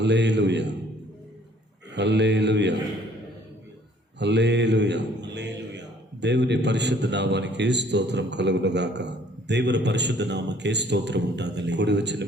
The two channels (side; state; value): both; normal; correlation 0.59